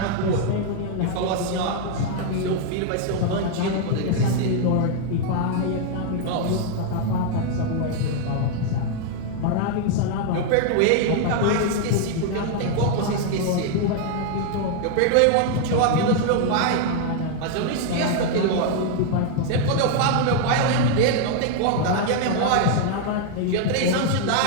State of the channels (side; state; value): both; different; correlation 0.00